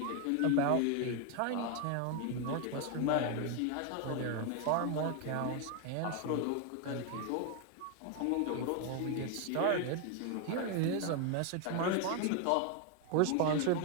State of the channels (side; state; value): both; different; correlation 0.01